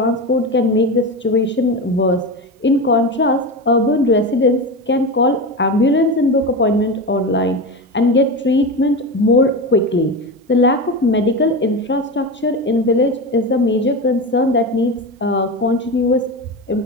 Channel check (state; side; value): normal; both; correlation 0.21